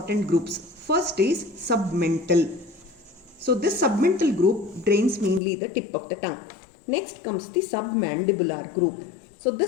groups. First is submental. So this submental group drains mainly the tip of the tongue. Next comes the submandibular group. So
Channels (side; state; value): right; drops out; at 5.4 s